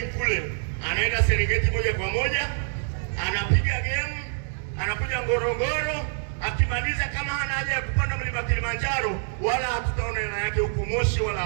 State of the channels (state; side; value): silent; left; 61 dB below the other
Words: kule, anaenda Serengeti moja kwa moja, anapiga game, anakuja Ngorongoro, akimaliza kama hana haja ya kupanda mlima Kilimanjaro, wala hatutaona hela yake huko Moshi wala